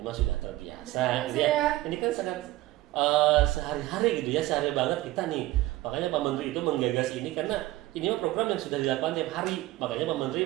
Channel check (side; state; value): left; quieter; 17.2 dB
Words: sudah terbiasa gitu ya. Ini kan sangat sehari-hari gitu ya, sehari banget kita nih. Makanya Pak Menteri itu menggagas ini karena ini mah program yang sudah dilakukan tiap hari. Makanya Pak Menteri